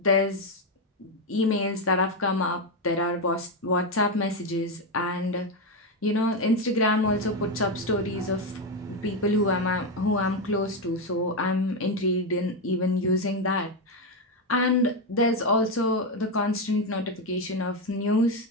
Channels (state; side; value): normal; both; correlation 0.08